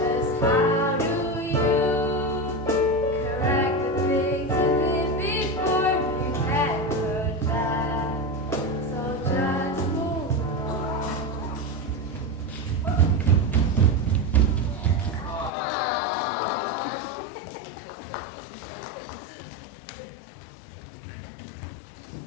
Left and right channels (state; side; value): drops out; right; at 15.5 s